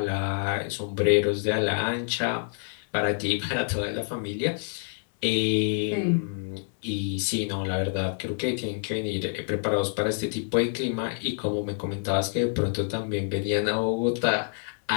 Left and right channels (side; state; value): right; silent; 60 dB below the other